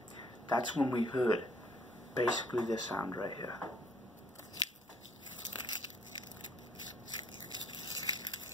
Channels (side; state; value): both; normal; correlation 0.62